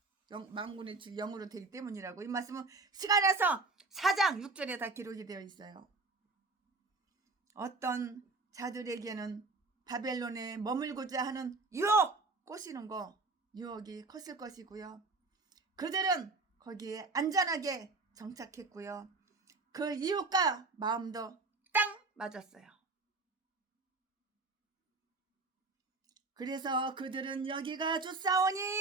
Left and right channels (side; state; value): left; quieter; 3.6 dB